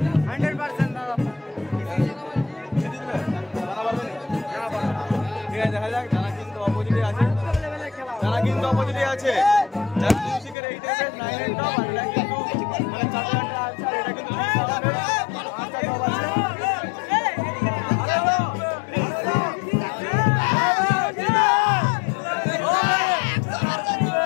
দেখা যাক জানা কিন্তু অপোজিটে আছে, জানা কিন্তু অপোজিটে আছে। যার মিউজিকের 8 9 টপ আর এটা কিন্তু মানে 4টা আছে আর এটা কিন্তু 5টা টপ আছে।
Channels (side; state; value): right; drops out; at 10.6 s